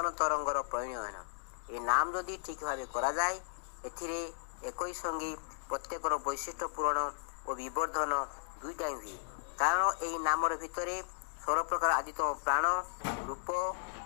तरंगर परिणयन ये नाम जदि ठीक भाव करा जाए एथिरे एकई संगी प्रत्येकर वैशिष्ट्य पूरण और विवर्धन दुईटा हुए कारण यही नामर भितर 16 प्रकार आदितम प्राण रूप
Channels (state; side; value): silent; right; digital silence